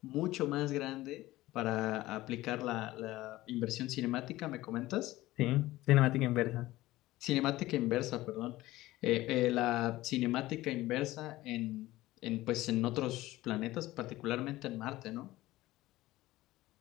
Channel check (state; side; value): quieter; right; 17.3 dB